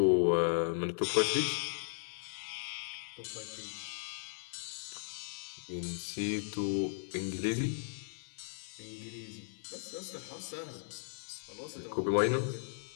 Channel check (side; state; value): right; silent; 53 dB below the other